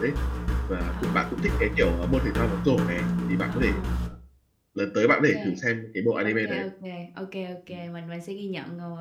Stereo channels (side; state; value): both; identical; correlation 1.00